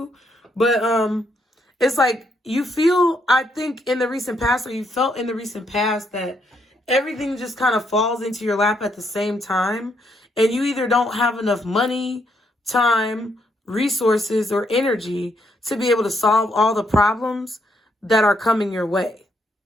But it's like you feel, I think in the recent past, or you felt in the recent past, that everything just kind of falls into your lap at the same time. And you either don't have enough money, time, resources, or energy to be able to solve all the problems that are coming your way.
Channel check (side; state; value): both; normal; correlation 0.75